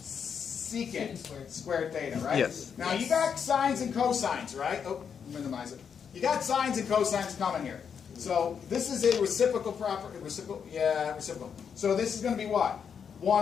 squared theta, right? Yes. Now you got sines and cosines, right? Oh, minimize it. You got sines and cosines coming here. So this is a reciprocal property. Reciprocal. So this is going to be what?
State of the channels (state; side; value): quieter; right; 7.1 dB